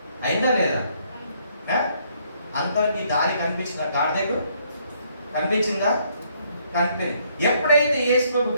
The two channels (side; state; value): both; inverted; correlation -0.68